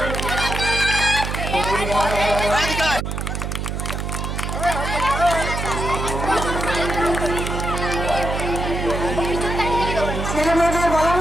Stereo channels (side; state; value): right; noise; hum, 3 dB below the sound